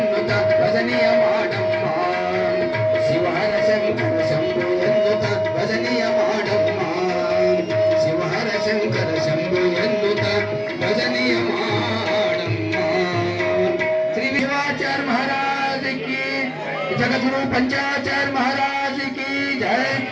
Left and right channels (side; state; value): both; identical; correlation 1.00